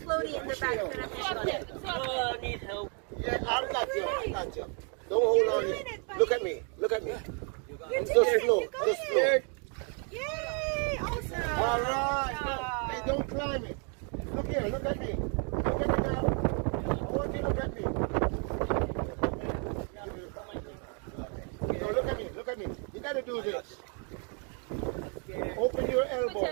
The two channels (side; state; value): left; quieter; 39.0 dB